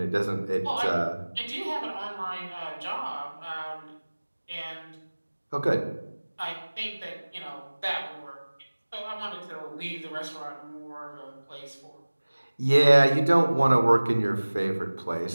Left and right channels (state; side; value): inverted; both; correlation -1.00